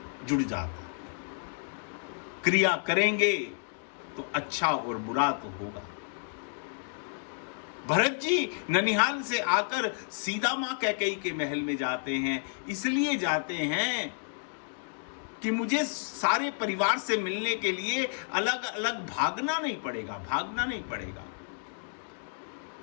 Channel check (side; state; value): right; silent; digital silence